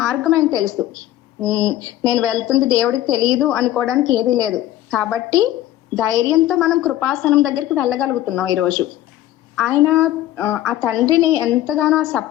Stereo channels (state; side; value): quieter; right; 13.7 dB